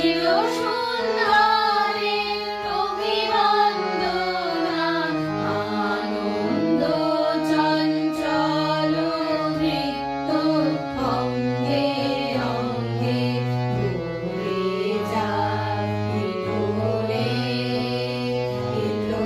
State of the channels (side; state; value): both; identical; correlation 1.00